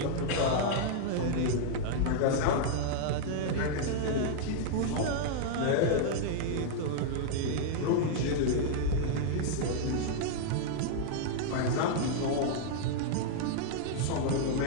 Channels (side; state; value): both; different; correlation -0.01